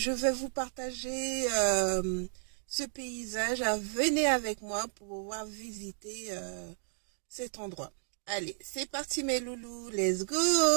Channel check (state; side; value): silent; left; digital silence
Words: vais vous partager ce paysage. Venez avec moi pour pouvoir visiter cet endroit. Allez, c'est parti mes loulous, let's go!